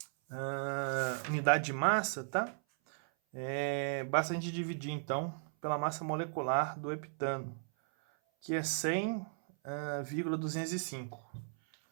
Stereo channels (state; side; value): silent; left; 54 dB below the other